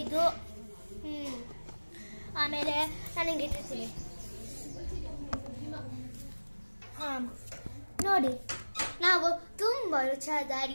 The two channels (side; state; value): both; inverted; correlation -1.00